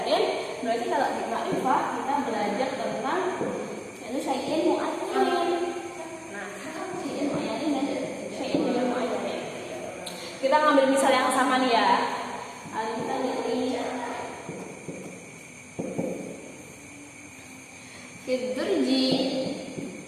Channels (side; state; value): both; identical; correlation 1.00